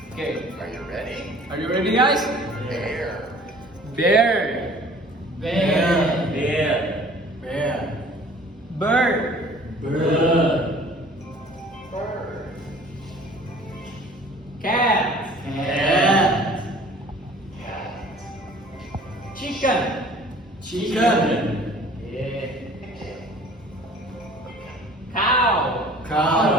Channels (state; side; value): normal; both; correlation 0.50